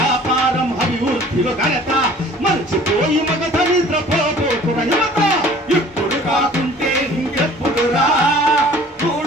అభివృద్ధిలో ఘనత మర్చిపోయి మగత నిద్రపోతున్న యువత ఇప్పుడు కాకుంటే ఇంకెప్పుడురా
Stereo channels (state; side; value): normal; both; correlation 0.50